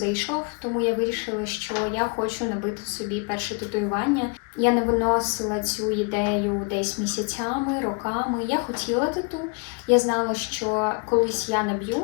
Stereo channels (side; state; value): right; quieter; 33.5 dB